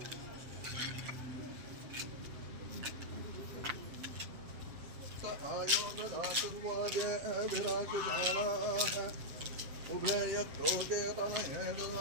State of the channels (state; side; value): late; left; 7.5 ms